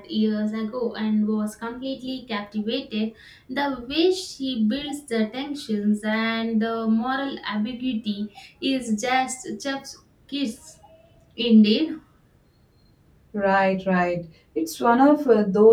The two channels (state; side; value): identical; both; correlation 1.00